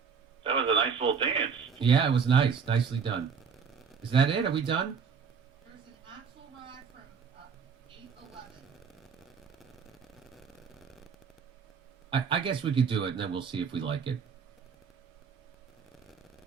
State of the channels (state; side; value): quieter; left; 6.2 dB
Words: That was a nice little dance. Yeah, it was nice. Nicely done. Is that it? Are we done? There's an axle rod from 811. I guess we could do it, and then we'll see if we like it.